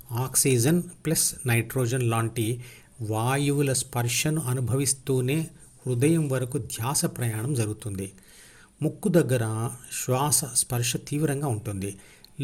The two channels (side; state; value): both; identical; correlation 1.00